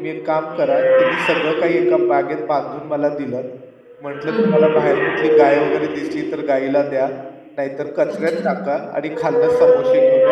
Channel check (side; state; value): both; identical; correlation 1.00